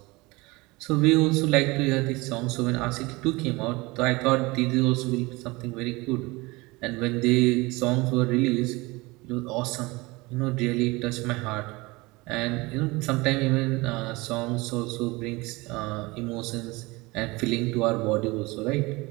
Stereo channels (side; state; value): left; quieter; 23.3 dB